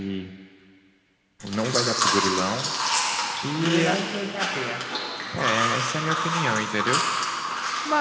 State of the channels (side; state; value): both; identical; correlation 1.00